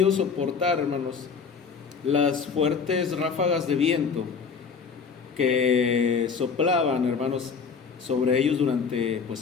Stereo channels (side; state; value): right; quieter; 5.8 dB